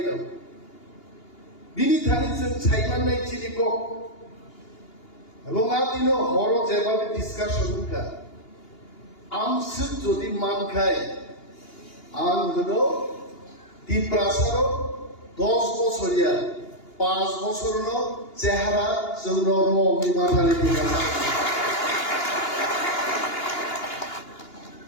বিনি থানিছেন ছাইমান নাই চিনি কক এবং আদিন হর যেভাবে ডিসকাশন কা আমসুক যদি মান খায় আং হলো টিপ্রাসার 10 বছরিয়া 5 বছর চেহারা জৌনর মাথালে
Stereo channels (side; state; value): right; late; 2.8 ms